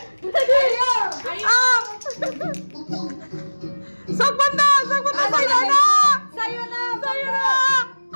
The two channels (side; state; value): both; inverted; correlation -1.00